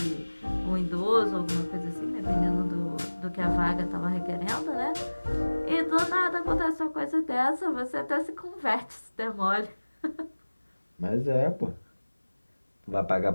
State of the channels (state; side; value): inverted; both; correlation -1.00